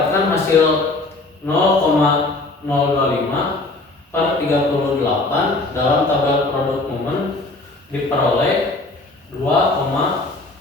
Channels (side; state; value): right; quieter; 3.1 dB